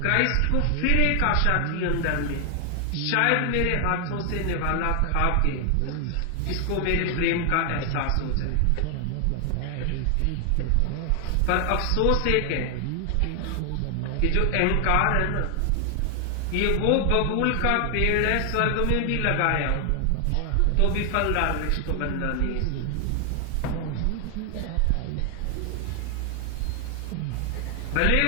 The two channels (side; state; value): both; different; correlation 0.00